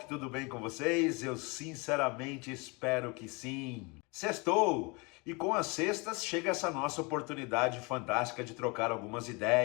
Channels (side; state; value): right; quieter; 28.6 dB